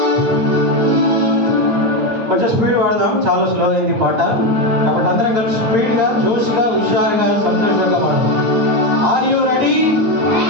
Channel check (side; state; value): left; late; 8.7 ms